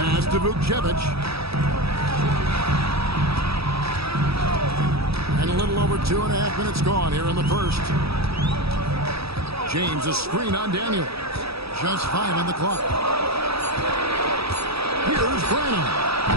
to Vukcevic. And a little over 2.5 minutes gone here in the first. James, a screen on Daniel. Just 5 on the clock. Here's Branham.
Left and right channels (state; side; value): late; left; 0.77 ms